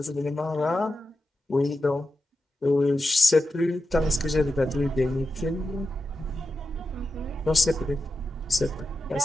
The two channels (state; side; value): normal; both; correlation 0.90